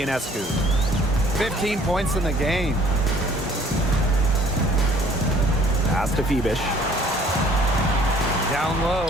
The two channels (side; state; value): both; normal; correlation 0.56